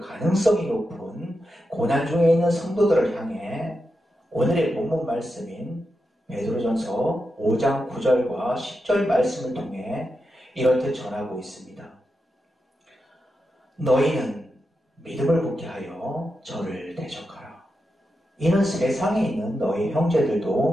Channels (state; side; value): normal; both; correlation 0.88